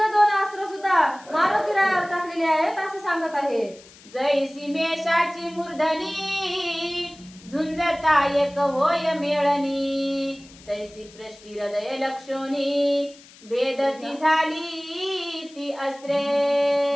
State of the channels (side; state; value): left; noise; hiss, 23 dB below the sound